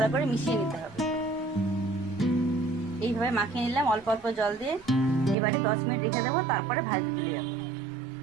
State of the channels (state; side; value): drops out; left; at 5.4 s